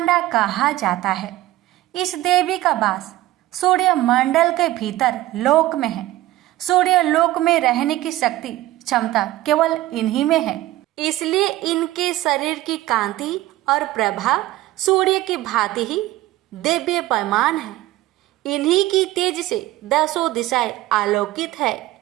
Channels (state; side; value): quieter; left; 16.3 dB